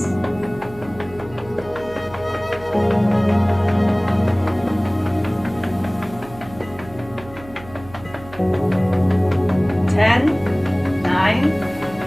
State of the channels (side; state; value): right; noise; hum, 18 dB below the sound